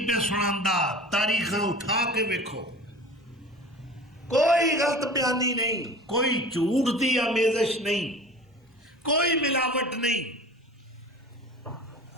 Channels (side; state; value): both; normal; correlation 0.40